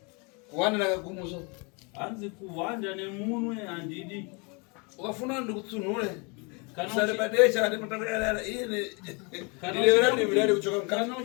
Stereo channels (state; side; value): quieter; right; 31.8 dB